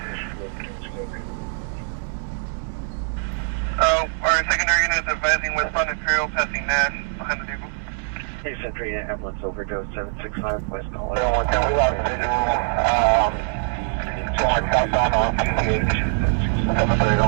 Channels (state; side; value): silent; left; digital silence